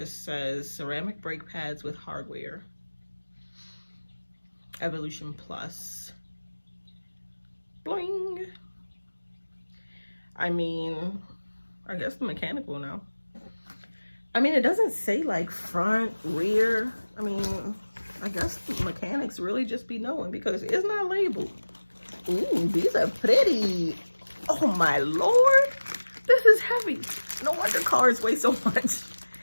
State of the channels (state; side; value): inverted; both; correlation -1.00